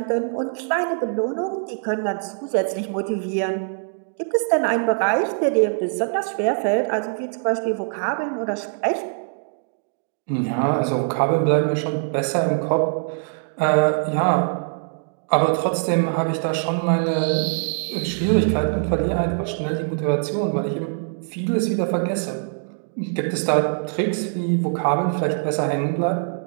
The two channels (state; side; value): silent; left; digital silence